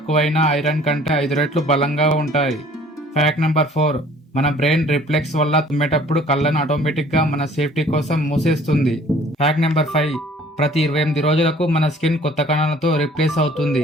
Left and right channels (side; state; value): both; normal; correlation 0.53